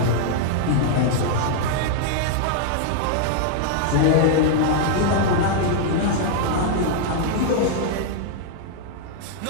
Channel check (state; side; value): different; both; correlation 0.00